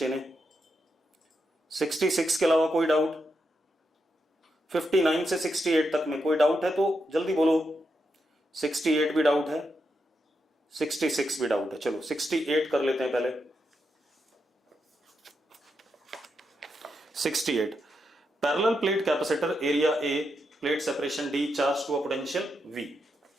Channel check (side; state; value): both; normal; correlation 0.84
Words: ने, 66 के अलावा कोई डाउट? 59 से 68 तक में कोई डाउट है तो जल्दी बोलो। 68 भी डाउट है, 66 भी डाउट है, चलो 68 कर लेते हैं पहले। 68, parallel plate capacitor, area A, plate separation D, charge to a potential V,